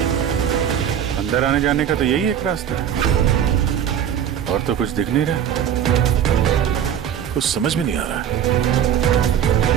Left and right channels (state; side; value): quieter; left; 9.3 dB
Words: अंदर आने जाने का तो यही एक रास्ता है, और तो कुछ दिख नहीं रहा। कुछ समझ में नहीं आ रहा।